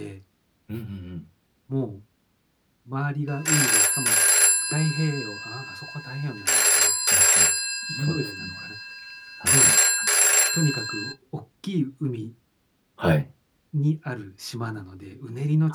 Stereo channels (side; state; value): both; identical; correlation 1.00